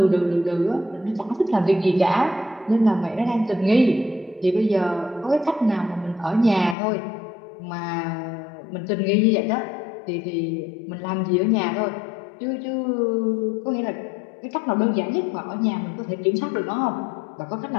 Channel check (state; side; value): drops out; right; at 6.8 s